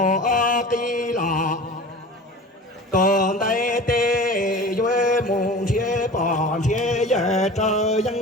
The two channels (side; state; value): both; normal; correlation 0.37